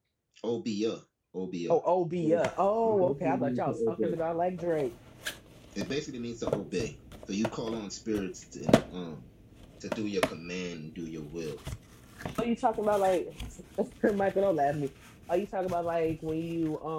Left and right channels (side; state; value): both; identical; correlation 1.00